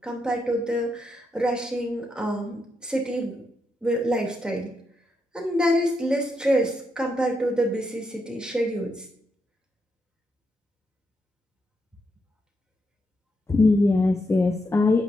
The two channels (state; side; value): normal; both; correlation 0.82